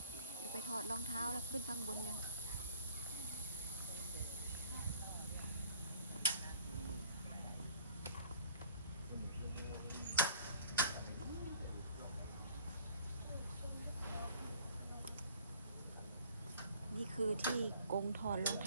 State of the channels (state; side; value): inverted; both; correlation -0.55